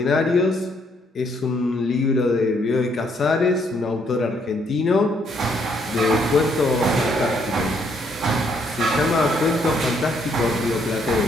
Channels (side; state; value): both; normal; correlation 0.70